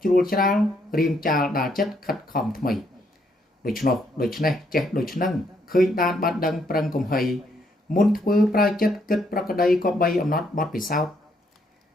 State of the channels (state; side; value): normal; both; correlation 0.73